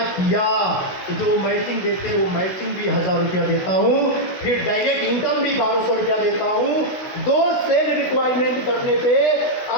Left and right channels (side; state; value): right; late; 16 ms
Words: किया तो जो मैचिंग देते हैं वो मैचिंग भी 1000 रुपया देता हूँ, फिर डायरेक्ट इनकम भी 1200 रुपया देता हूँ। दो सेल रिक्वायरमेंट करने पे